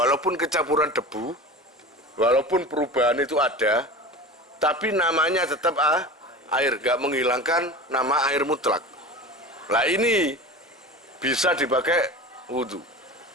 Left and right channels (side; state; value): both; normal; correlation 0.32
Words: kecampuran debu, walaupun perubahan itu ada, tapi namanya tetap air, nggak menghilangkan nama air mutlak. Lah ini bisa dipakai wudhu.